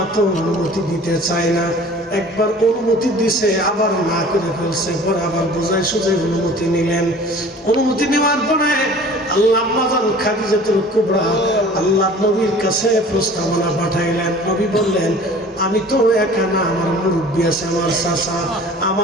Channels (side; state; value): both; normal; correlation 0.45